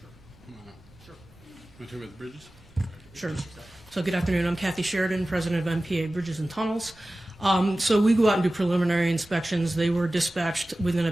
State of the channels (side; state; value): right; noise; rumble, 27 dB below the sound